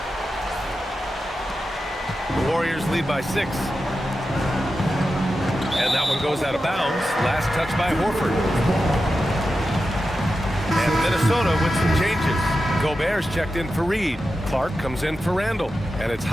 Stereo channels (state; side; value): normal; both; correlation 0.91